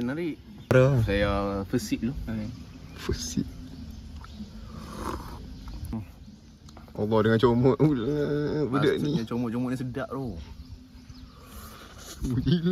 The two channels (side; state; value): both; identical; correlation 1.00